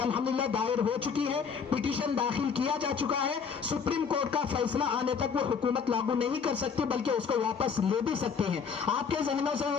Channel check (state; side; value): quieter; right; 6.2 dB